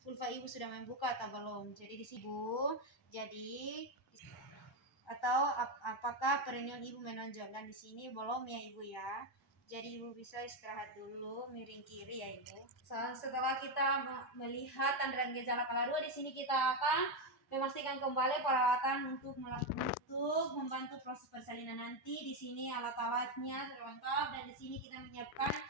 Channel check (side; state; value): both; normal; correlation 0.07